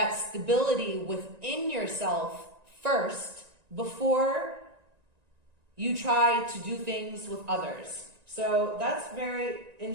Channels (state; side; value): late; left; 1.9 ms